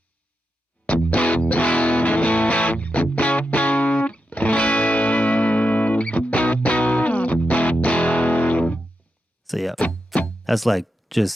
So yeah, that's like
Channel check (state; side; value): normal; both; correlation 0.87